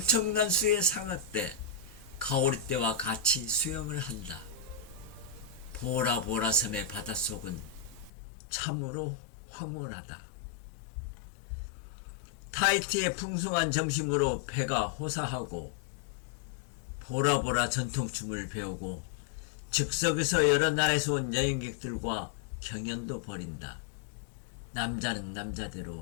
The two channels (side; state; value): right; drops out; at 8.1 s